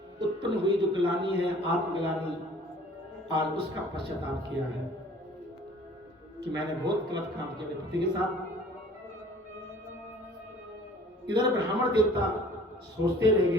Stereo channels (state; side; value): normal; both; correlation 0.50